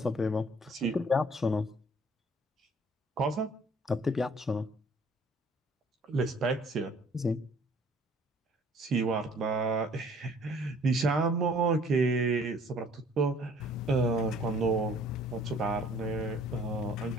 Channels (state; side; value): normal; both; correlation 0.56